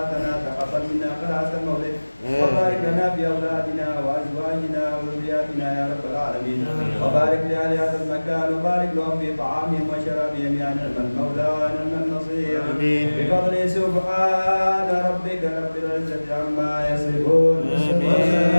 تقبل منا قراءة المولد وبارك لنا في اولادنا وازواجنا وذرياتنا يا رب العالمين. وبارك لاهل هذا المكان وبارك لهم في طعامهم وشرابهم يا نعم المولى ونعم النصير. بفضل سبحان ربك رب العزة عما يصفون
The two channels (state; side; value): inverted; both; correlation -1.00